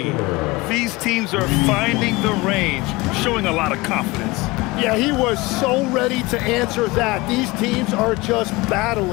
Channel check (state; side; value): quieter; right; 22.2 dB